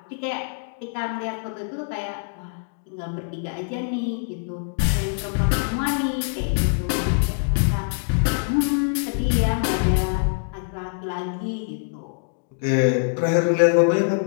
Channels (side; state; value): right; silent; digital silence